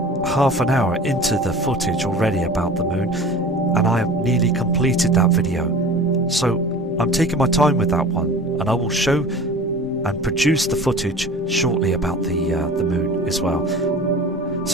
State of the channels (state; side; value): normal; both; correlation 0.40